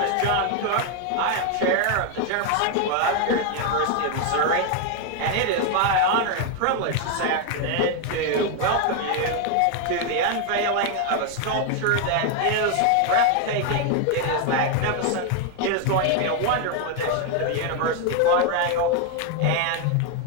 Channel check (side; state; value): both; different; correlation 0.01